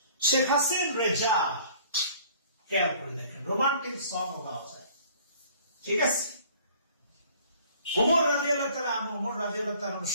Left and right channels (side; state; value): both; inverted; correlation -0.53